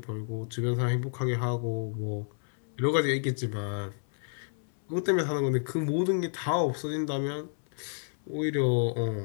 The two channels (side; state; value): right; silent; 58 dB below the other